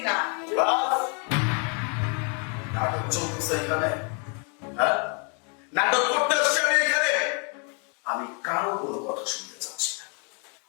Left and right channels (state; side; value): quieter; right; 37.5 dB